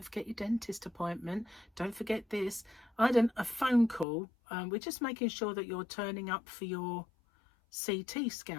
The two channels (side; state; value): right; drops out; at 4.0 s